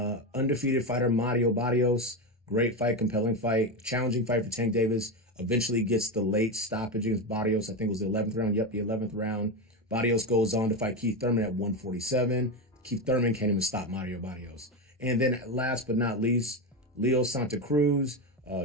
Undefeated fighter Mario Barrios, great fight, compelling fight, challenging fight for Tank Davis. Eventually gets the late stoppage against Barrios. I think it was the 11th round. Yep, the 11th round. Barrios goes on to fight Keith Thurman at 147. Keith Thurman can't even stop Mario Barrios. And then last but not least, Leo Santa Cruz,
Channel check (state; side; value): normal; both; correlation 0.15